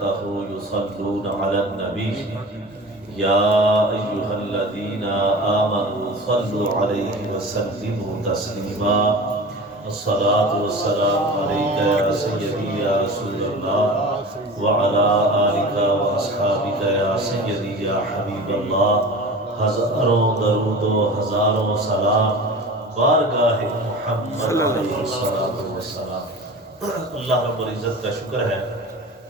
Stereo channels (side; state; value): both; normal; correlation 0.35